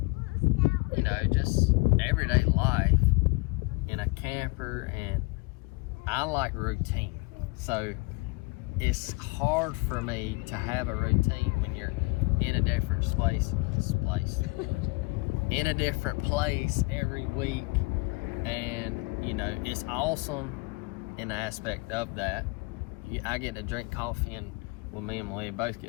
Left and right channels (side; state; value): right; quieter; 26.8 dB